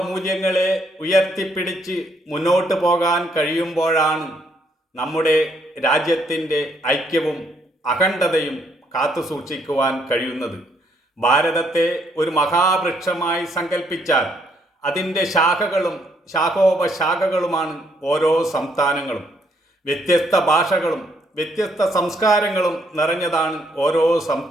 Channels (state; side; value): normal; both; correlation 0.70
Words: മൂല്യങ്ങളെ ഉയർത്തിപ്പിടിച്ച് മുന്നോട്ട് പോകാൻ കഴിയുമ്പോഴാണ് നമ്മുടെ രാജ്യത്തിൻ്റെ ഐക്യവും അഖണ്ഡതയും കാത്തുസൂക്ഷിക്കുവാൻ കഴിയുന്നത്. ഭാരതത്തെ ഒരു മഹാവൃക്ഷമായി സങ്കല്പിച്ചാൽ അതിൻ്റെ ശാഖകളും ശാഖോപശാഖകളുമാണ് ഓരോ സംസ്ഥാനങ്ങളും. വ്യത്യസ്ത ഭാഷകളും വ്യത്യസ്ത സംസ്കാരങ്ങളും നിറഞ്ഞതാണ് ഓരോ